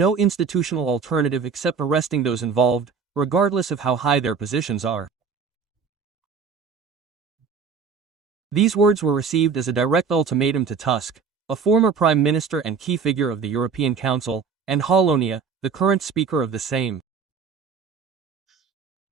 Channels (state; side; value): quieter; left; 5.7 dB